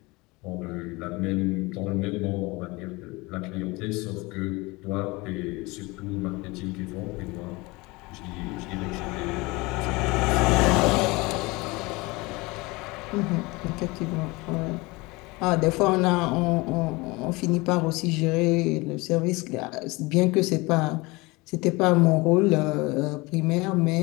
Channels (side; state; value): right; quieter; 23.9 dB